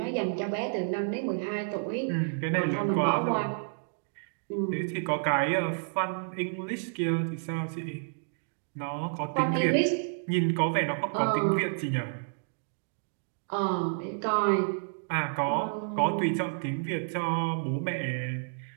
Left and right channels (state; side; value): silent; left; digital silence